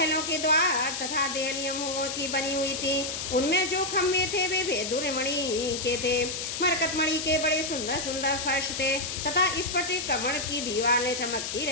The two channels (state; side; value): noise; left; hiss, 4 dB below the sound